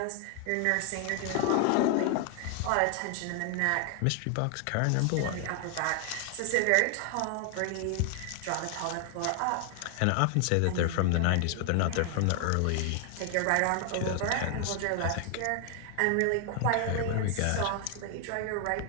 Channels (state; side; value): different; both; correlation 0.00